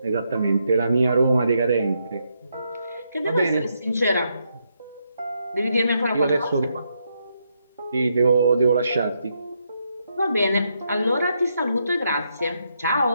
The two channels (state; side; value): inverted; both; correlation -0.79